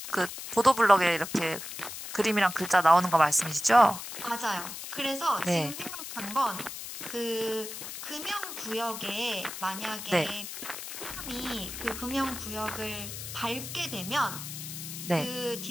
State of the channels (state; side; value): noise; left; hiss, 9 dB below the sound